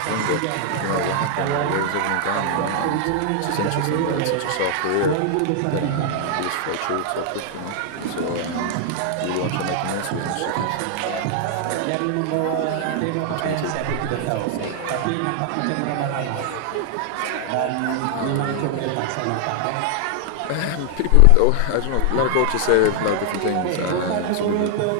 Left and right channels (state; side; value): different; both; correlation 0.00